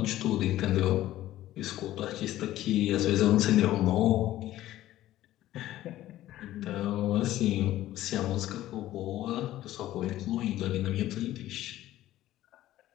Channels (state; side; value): quieter; right; 14.4 dB